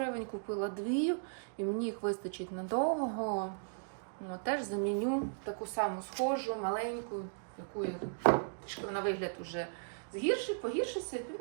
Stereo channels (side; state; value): left; silent; digital silence